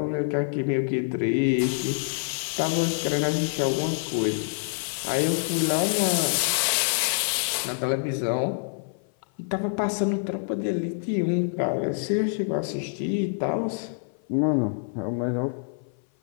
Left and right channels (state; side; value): silent; right; 55 dB below the other